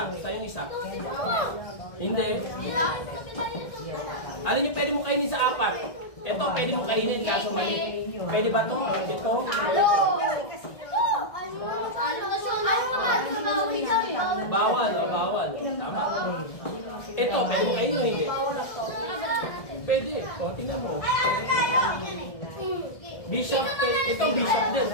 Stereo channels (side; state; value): right; late; 1.6 ms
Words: Sa'yo yung isa. Hindi. Ano yung pwede mo kainin sa apat? Ito, pwede mo kainin kaso mali. Pwede ba ito? Ito? Bawal. Bawal. Tama. Ito, pwede mo kainin o hindi? Pwede. O, tingnan mo. Bishop, ito bishop din.